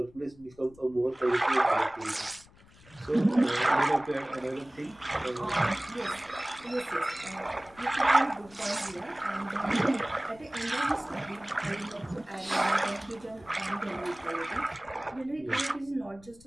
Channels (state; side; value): noise; left; rumble, 25 dB below the sound